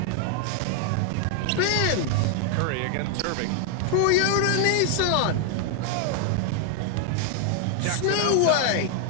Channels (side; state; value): both; different; correlation 0.00